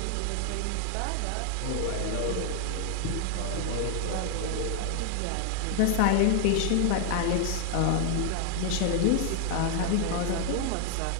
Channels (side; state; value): both; different; correlation 0.00